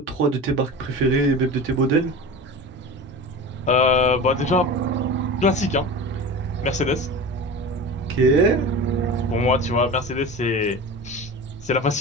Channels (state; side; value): normal; both; correlation 0.31